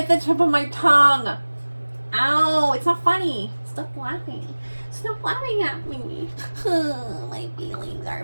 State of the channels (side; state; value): both; inverted; correlation -1.00